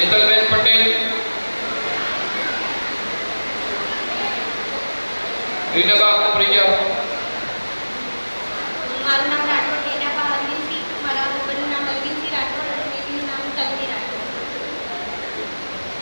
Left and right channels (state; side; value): inverted; both; correlation -1.00